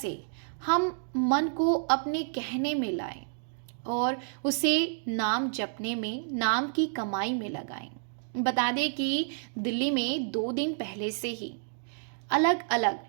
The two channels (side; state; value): left; silent; digital silence